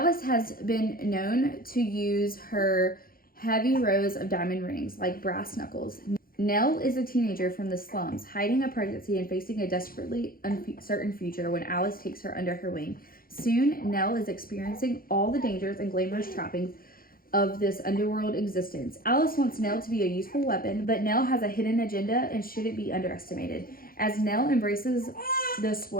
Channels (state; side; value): late; right; 0.42 ms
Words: has been known to use her heavy rows of diamond rings like brass knuckles. Nell is a teenager from the slums, hiding a pregnancy and facing a desperately uncertain future when Alice takes her under her wing. Soon, Nell is experiencing all the dangers and glamorous trappings of this underworld existence. Alice wants Nell to be a useful weapon, but Nell has a hidden agenda and shouldn't be underestimated. As Nell embraces the